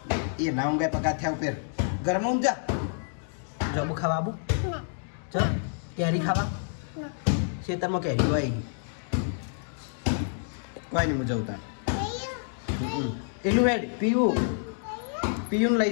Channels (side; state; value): right; silent; digital silence